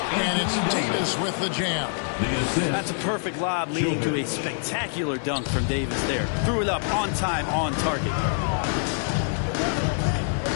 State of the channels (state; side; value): silent; right; digital silence